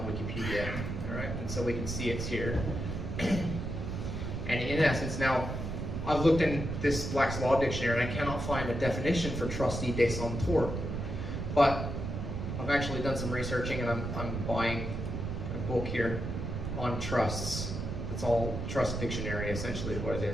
Wikipedia, alright, and so we can see it's here. And in essence, now I've looked in this Black's Law Dictionary and I cannot find a definition for trustee de son tort. But I've actually done some researching and I'm buying a book here on trusts. It's all trust dictionary essentially is what it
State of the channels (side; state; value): right; noise; rumble, 4 dB below the sound